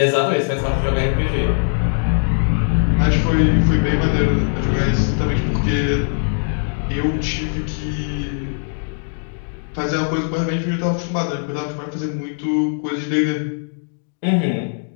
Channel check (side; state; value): right; silent; digital silence